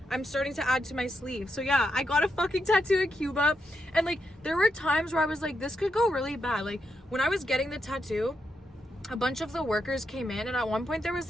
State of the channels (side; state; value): both; normal; correlation 0.83